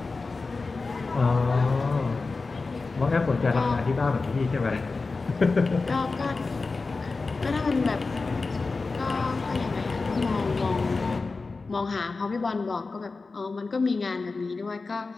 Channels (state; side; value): quieter; right; 3.9 dB